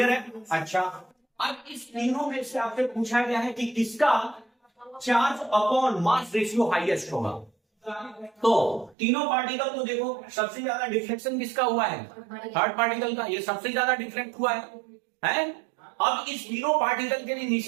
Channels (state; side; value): drops out; left; at 9.0 s